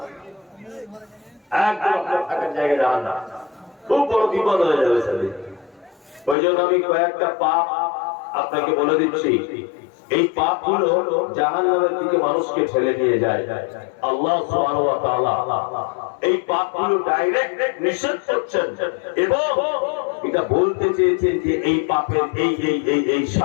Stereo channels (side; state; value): right; drops out; at 6.4 s